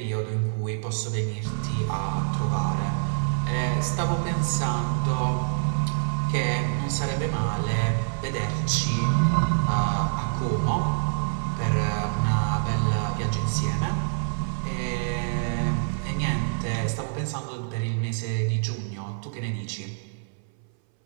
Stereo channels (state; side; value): silent; left; 59 dB below the other